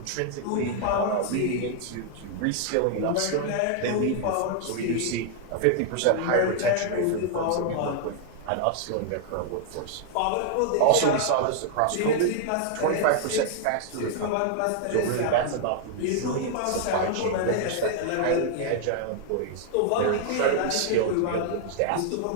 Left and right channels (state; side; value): different; both; correlation 0.00